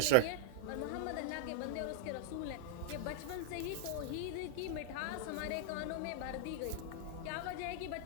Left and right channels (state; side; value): different; both; correlation -0.01